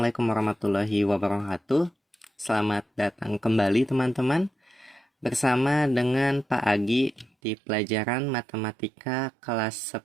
warahmatullahi wabarakatuh. Selamat datang kembali teman-teman bersama dengan Pak Agi di pelajaran Matematika kelas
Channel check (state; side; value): drops out; left; at 7.3 s